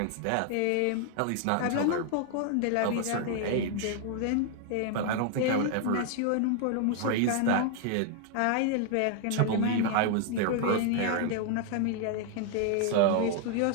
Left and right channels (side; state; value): both; different; correlation 0.00